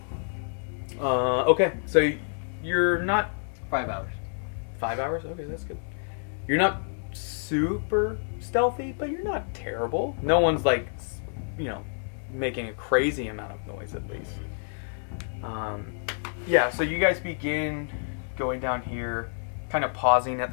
Okay, so you're not 5 hours. 5 hours. Okay, that's good. You're not super stealthy, but you're not terrible. No one's like, making a crazy amount of noise at least. Yeah, so you guys begin going down here, kind of pausing at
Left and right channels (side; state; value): right; silent; 59 dB below the other